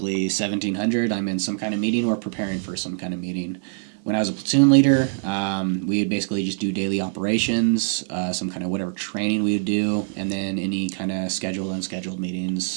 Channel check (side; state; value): left; silent; 63 dB below the other